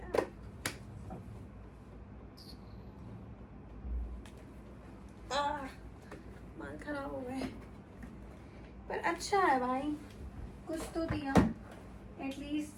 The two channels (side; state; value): both; identical; correlation 1.00